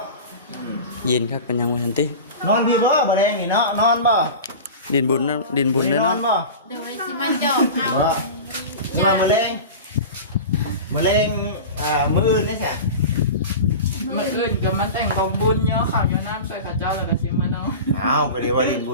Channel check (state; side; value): inverted; both; correlation -0.31